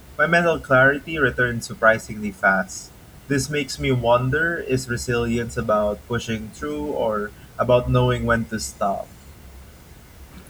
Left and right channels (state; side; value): identical; both; correlation 1.00